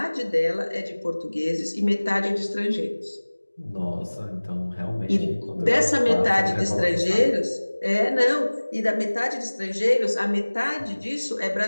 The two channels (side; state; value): both; inverted; correlation -1.00